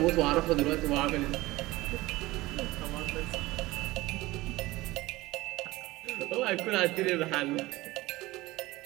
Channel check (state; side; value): quieter; left; 19.2 dB